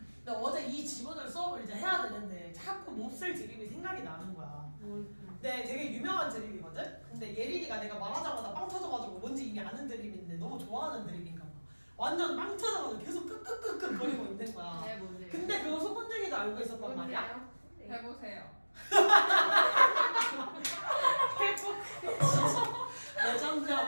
근데 어제 이 지문을 수업을 이제 해야 되는데 자꾸 몹쓸 드립이 생각이 나는 거야. 네, 되게 유명한 드립이거든? 근데 예린이가 내가 말하자마자 빵 터져가지고 뭔지 이미 아는 드립인데 너무 좋아하는 드립인가 봐. 완전 빵 터져가지고 계속 끄끄끄끄 거리고 있는 거야. 네 뭔데요? 근데 그거 소문쟁이도 알고 있었단 말이야. 뭔데요? 네. 해보세요.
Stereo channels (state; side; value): inverted; both; correlation -1.00